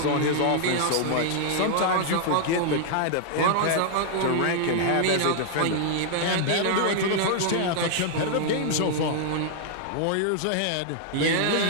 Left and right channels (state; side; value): different; both; correlation -0.01